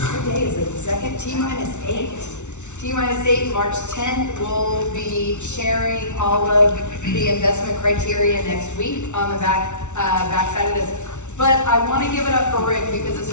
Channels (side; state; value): right; late; 0.83 ms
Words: day is it, the second? T-8. T-8, March 10th. We'll be sharing all of the investment criteria next week on the backside of this. But I want to give it up for Rick because this